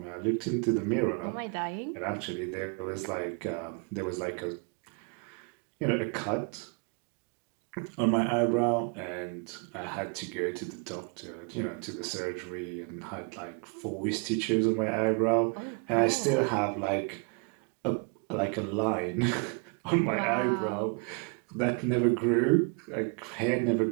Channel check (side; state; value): left; quieter; 35.1 dB